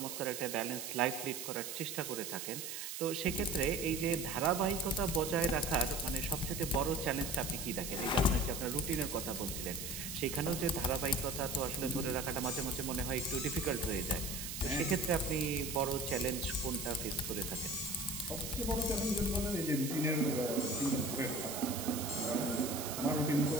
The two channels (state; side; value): noise; right; hiss, 6 dB below the sound